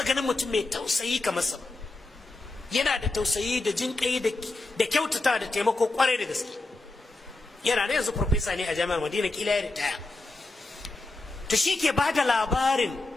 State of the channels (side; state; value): right; quieter; 3.1 dB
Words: ganin mutum mai tausayi kamar sa, yana da tausayi da jinƙai da kyautata da taimako kwarai da gaske. Yana da yanzu professor ne a jami'ar Madina, kila ya ritaya. To shi ke ba da labarin